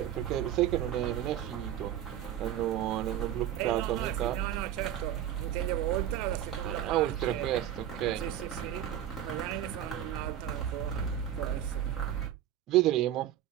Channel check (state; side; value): quieter; left; 11.2 dB